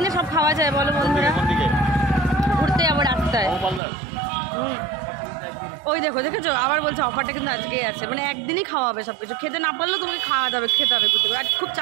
সব খাওয়া যায় বলো বন্ধুরা। ঘুরতে যাবো রাস্তায়। ওই দেখেছো আবার বলছে অফারটা কিন্তু আজকেই আছে, মানে একদিনই খাওয়া হবে সব কিছু। খেতে না পারলেও তোমাকে খাওয়া যাবে, খেতে হবে কিছু। আর খুব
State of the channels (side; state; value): left; drops out; at 3.8 s